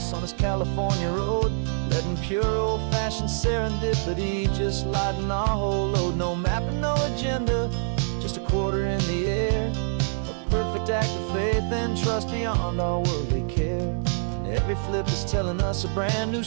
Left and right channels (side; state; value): left; silent; 61 dB below the other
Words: on this California road, letting pure old-fashioned serendipity just lighten our whole load. No map and no agenda, just a quarter in the air. A perfect act of faith and trust beyond our worldly care. And every flip is telling us a brand new